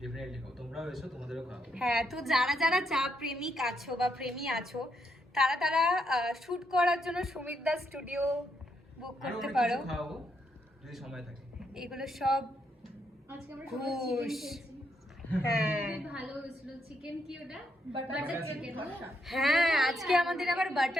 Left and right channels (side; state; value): both; normal; correlation 0.78